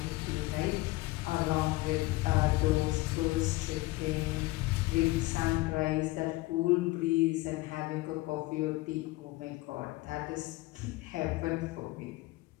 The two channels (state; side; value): quieter; right; 20.5 dB